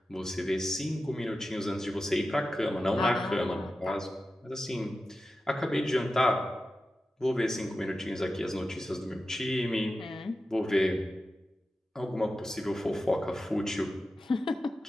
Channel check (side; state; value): both; normal; correlation 0.93